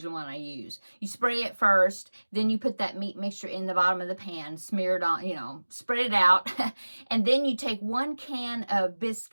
one I use. You spray it first, then you put that meat mixture in the bottom of the pan, smear it on, you know, spread it out, and then you take 1 can of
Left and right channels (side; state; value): both; inverted; correlation -1.00